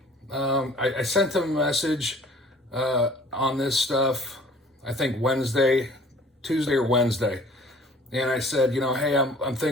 I sent him a message on this stuff, I think Tuesday or Wednesday. And I said, you know, hey, I'm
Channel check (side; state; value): both; normal; correlation 0.51